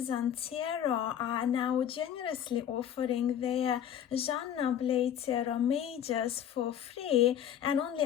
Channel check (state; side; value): quieter; right; 9.7 dB